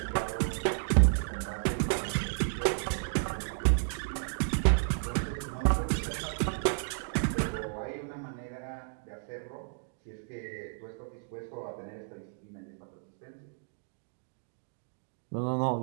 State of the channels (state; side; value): silent; left; digital silence